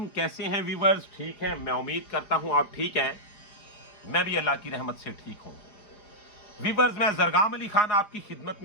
कैसे हैं व्यूवर्स? ठीक हैं? मैं उम्मीद करता हूं आप ठीक हैं। मैं भी अल्लाह की रहमत से ठीक हूं। व्यूवर्स, मैं जरगाम अली खान आपकी खिदमत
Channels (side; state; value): right; late; 5.1 ms